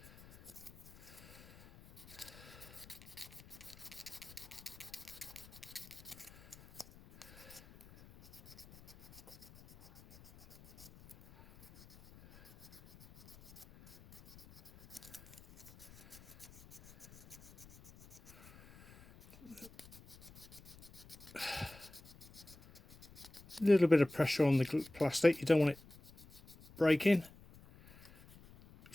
A little bit of pressure on the plastic, you don't want it breaking.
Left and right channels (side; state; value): left; noise; rumble, 20 dB below the sound